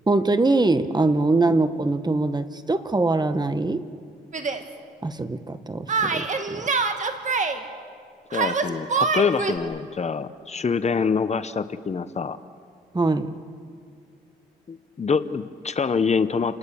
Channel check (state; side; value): normal; both; correlation 0.60